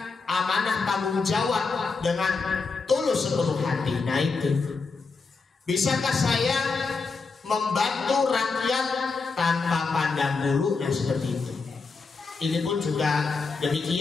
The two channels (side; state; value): right; quieter; 4.4 dB